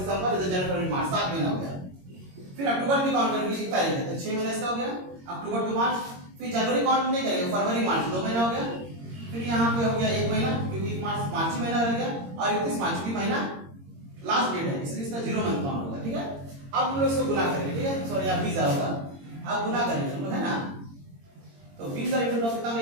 जनवरी, फरवरी, मार्च 7 महीना हो गया। फिर अक्टूबर भी काउंट करेंगे, 1 तारीख है तो 6 महीने इसका हो गया, अक्टूबर टू मार्च। फिर जनवरी काउंट नहीं करेंगे, फरवरी मार्च 2 महीना हो गया। फिर यहाँ पे हो गया 1 महीना, क्योंकि 1 मार्च ही महीना रह गया, और 31 मार्च की महीना लास्ट डेट है, इसलिए इसका 0 मंथ काउंट होगा, ठीक है। अब हम लोग इसको गुना करेंगे, ठीक है, सॉरी यहाँ 20,000 होगा। अब गुना करेंगे हम लोग, है ना। तो 20,000 इंटू 9 कितना में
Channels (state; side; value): late; left; 22 ms